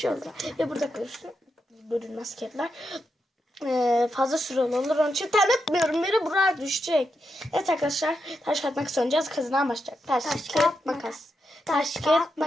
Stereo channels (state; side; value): normal; both; correlation 0.85